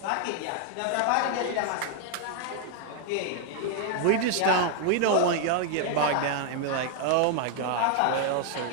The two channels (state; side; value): different; both; correlation 0.00